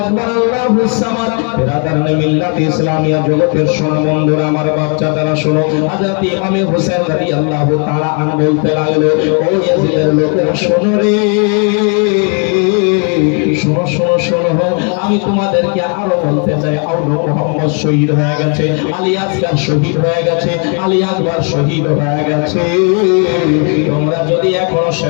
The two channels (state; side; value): quieter; right; 38.5 dB